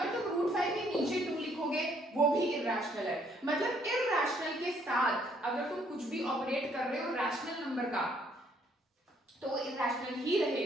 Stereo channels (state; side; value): normal; both; correlation 0.66